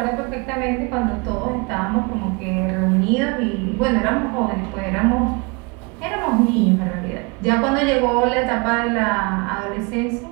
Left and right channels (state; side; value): quieter; left; 29.6 dB